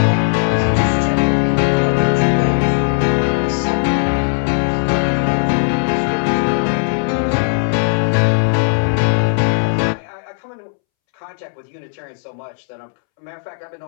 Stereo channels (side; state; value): right; silent; 68 dB below the other